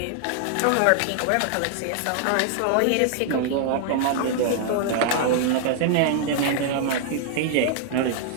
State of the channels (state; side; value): different; both; correlation 0.00